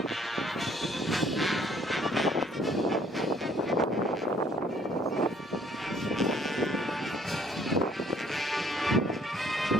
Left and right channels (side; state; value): both; normal; correlation 0.61